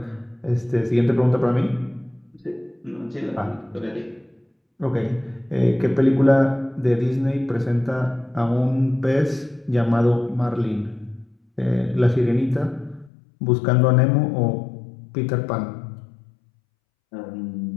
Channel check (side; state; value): right; drops out; at 13.1 s